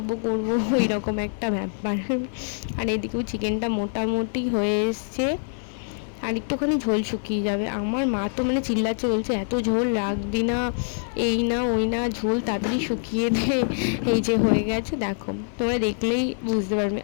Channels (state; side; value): silent; right; digital silence